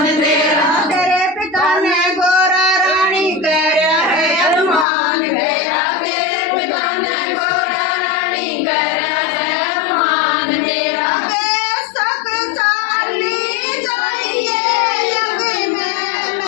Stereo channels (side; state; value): right; drops out; at 4.9 s